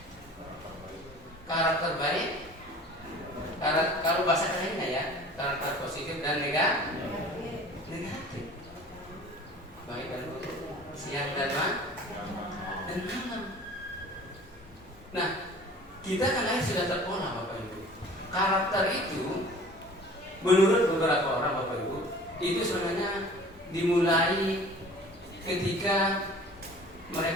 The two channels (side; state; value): both; normal; correlation 0.45